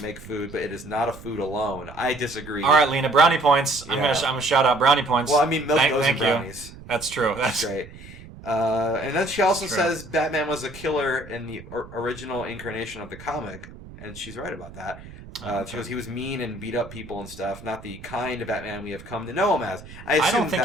make food, but it is not a food alone. I disagree. All right, Lena, brownie points. I'm gonna shout out brownie points. Well, I mean, milk goes in brownies. That's true. That's great. And then she also says Batman was a killer in the original incarnation of the comic, and she's right about that. She goes, he was mean and beat up people and stuff, not the kind of Batman we have come to know him as. I don't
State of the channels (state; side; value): noise; right; rumble, 17 dB below the sound